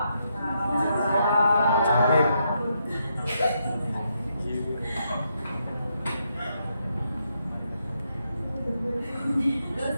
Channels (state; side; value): inverted; both; correlation -0.79